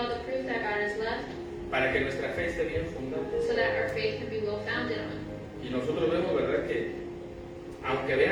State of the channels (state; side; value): identical; both; correlation 1.00